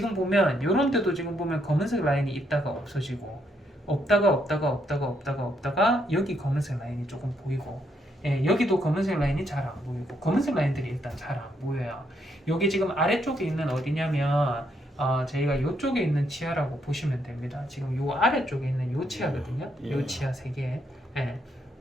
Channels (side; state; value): both; normal; correlation 0.75